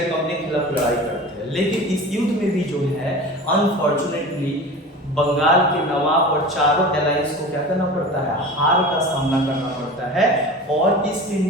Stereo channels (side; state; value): both; normal; correlation 0.35